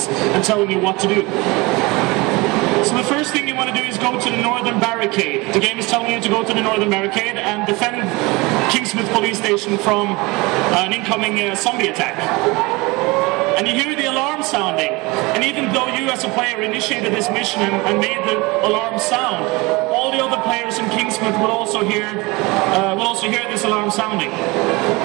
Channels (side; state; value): left; quieter; 24.1 dB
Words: and telling you what to do. So the first thing you want to do is go to the northern barricade. The game is telling you to go to the northern barricade and defend Kingsmouth police station from an incoming zombie attack. And you hear the alarm sounding. And even though you as a player initiated this mission and made the alarm sound, all the other players in Kingsmouth will also hear this alarm sounding.